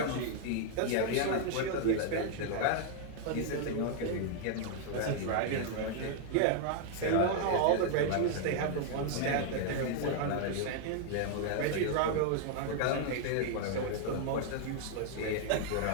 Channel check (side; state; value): both; different; correlation 0.00